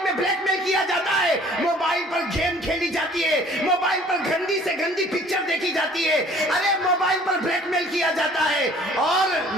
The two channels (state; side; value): normal; both; correlation 0.53